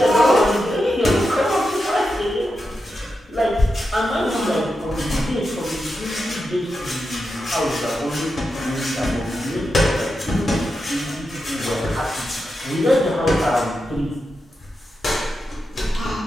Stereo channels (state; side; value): normal; both; correlation 0.88